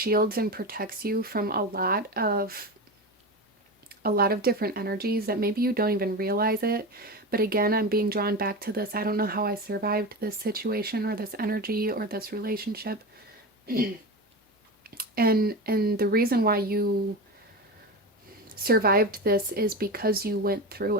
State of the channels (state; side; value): normal; both; correlation 0.23